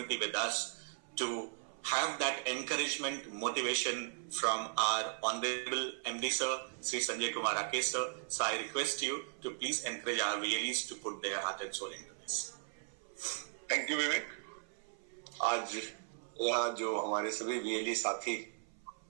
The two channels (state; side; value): silent; left; 53 dB below the other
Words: with us to have that encouragement, motivation from our Honorable MD Sir, Sri Sanjay Kumar Rakesh Sir. So I request you to please encourage our VLEs to put their heart and soul into this. Thank you, Vivek. आज यहाँ जो हमारे सभी VLE साथी